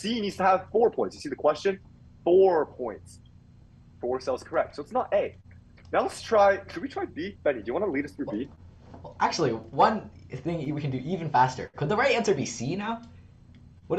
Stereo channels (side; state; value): both; identical; correlation 1.00